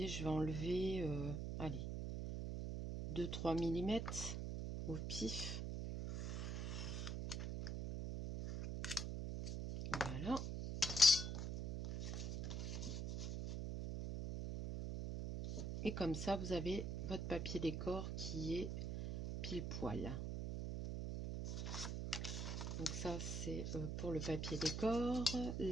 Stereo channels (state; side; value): noise; right; hum, 3 dB below the sound